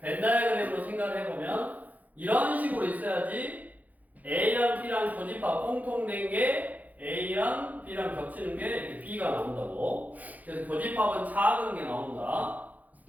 벤다이어그램으로 생각을 해보면 이런 식으로 있어야지 A랑 B랑 교집합 공통된 게 A랑 B랑 겹치는 게 이렇게 B가 나온다고. 그래서 교집합은 작은 게 나온다.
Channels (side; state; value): left; late; 0.079 ms